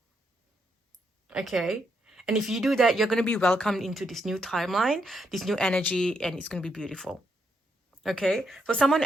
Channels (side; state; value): both; normal; correlation 0.78